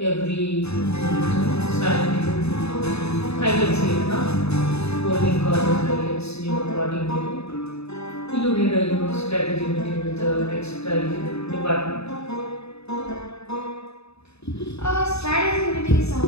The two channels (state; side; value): late; right; 0.79 ms